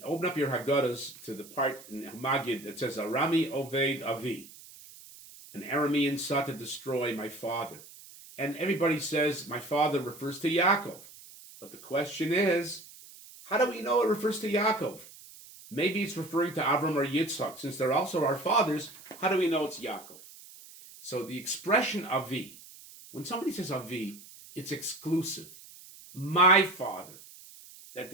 open up your Haggadahs to the part in Magid that says, Arami Oved Avi, an Aramean sought to destroy my father. And everybody says, my father refers to Yaakov. But the question is, how do we know it refers to Yaakov? Maybe it's referring to Avram or Yitzhak. Since they're also our fathers, how do we know it's Yaakov? So the expression Avi, when somebody says Avi, it's exclusive. My father.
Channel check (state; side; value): noise; right; hiss, 19 dB below the sound